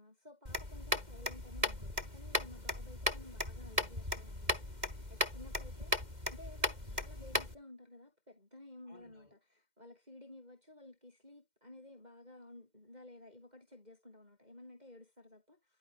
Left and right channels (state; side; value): late; left; 2.1 ms